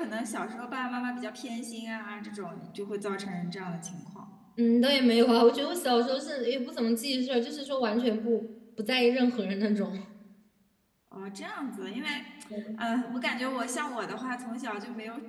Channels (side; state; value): both; identical; correlation 1.00